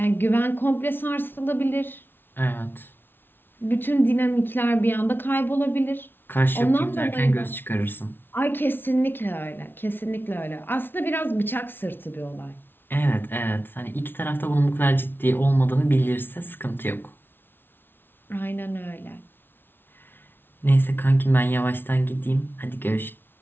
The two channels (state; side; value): late; right; 0.10 ms